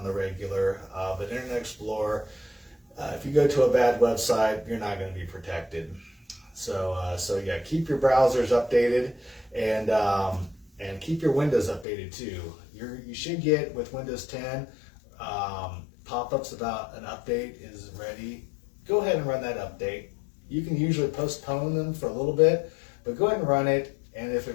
the regular, but Internet Explorer, if you go to a bad website, you're not going to be protected. So yeah, keep your browsers updated, and keep your Windows updated too. You should get, with Windows 10, pop-ups about an update is ready. Go ahead and run that update. You can usually postpone them for a little bit, but go ahead and run it. And if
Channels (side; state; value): right; drops out; at 11.9 s